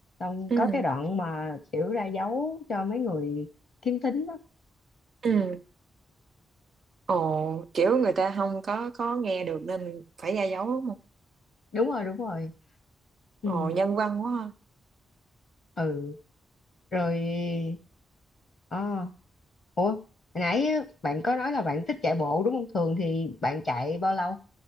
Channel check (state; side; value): normal; both; correlation 0.72